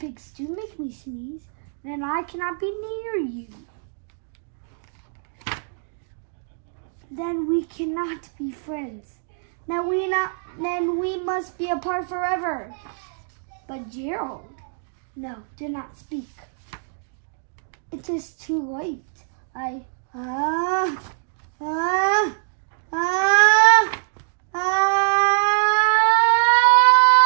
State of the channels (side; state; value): left; silent; digital silence